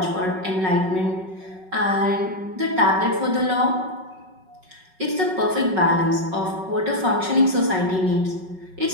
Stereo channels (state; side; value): late; left; 5.4 ms